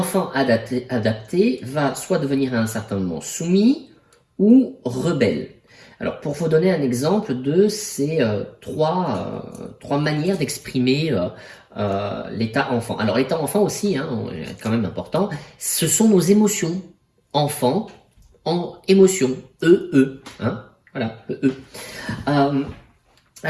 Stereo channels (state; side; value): identical; both; correlation 1.00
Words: adapté va soit devenir à un certain moment soumis ou rebelle. Alors, pour vous donner un exemple de ces trois manières d'exprimer l'état enfant. Alors, l'état enfant aussi, hein, quand même important, ce sont nos émotions. Enfant, en émotion, hein, voilà,